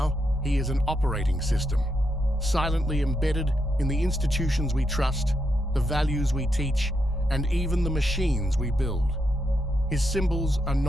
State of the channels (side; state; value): both; normal; correlation 0.82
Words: he is an operating system, silently embedded in the institutions we trust, the values we teach, and even the machines we build. His symbols are